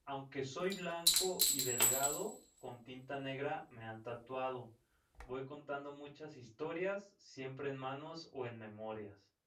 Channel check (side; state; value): both; identical; correlation 1.00